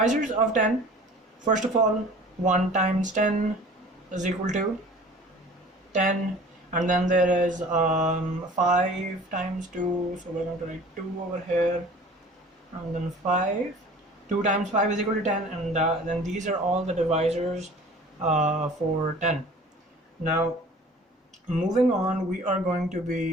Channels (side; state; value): both; normal; correlation 0.46